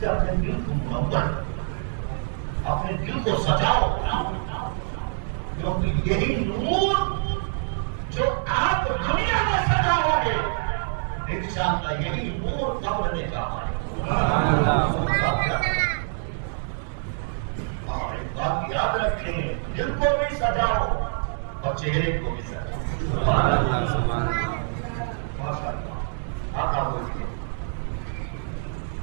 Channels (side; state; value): left; silent; digital silence